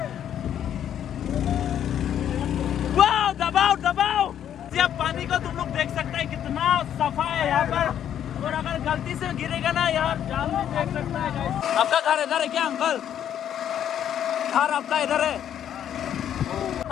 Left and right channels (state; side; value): quieter; right; 10.0 dB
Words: Wow, दबाओ। जब पानी को तुम लोग देख सकते हैं कितना सफा है यहाँ पर, और अगर गलती से गिरेगा ना यार जान भी देख सकता है गाइस। आपका घर इधर है क्या अंकल? घर आपका इधर है?